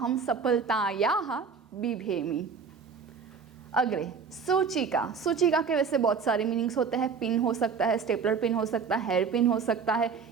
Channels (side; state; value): left; quieter; 5.8 dB